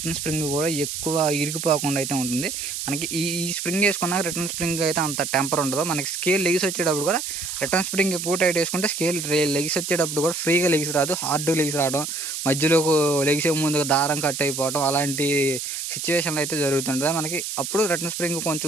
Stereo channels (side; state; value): right; noise; hiss, 5 dB below the sound